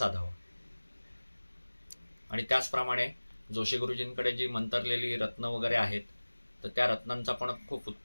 आणि त्याचप्रमाणे जोशी गुरुजींकडे जी मंतरलेली रत्न वगैरे आहेत तर त्या रत्नांचा पण खूप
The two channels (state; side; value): inverted; both; correlation -1.00